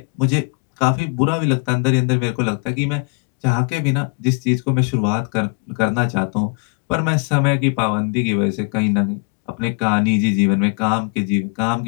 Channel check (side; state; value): right; quieter; 34.5 dB